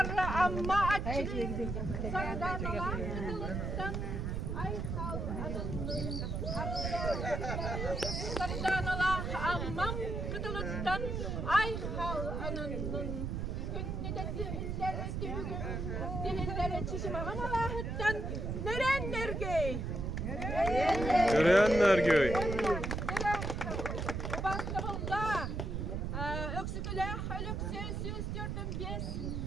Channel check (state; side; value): noise; right; rumble, 2 dB below the sound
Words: amma açık. Sardanalar kıtılıktan ay sal adının. Sardanalar ammam kıtılıktan ay hal anının. Dihillere çişime Allah'tan nerenler göy? Görenler göy. Bastığında öksüküle ölükse süstürdüm biz.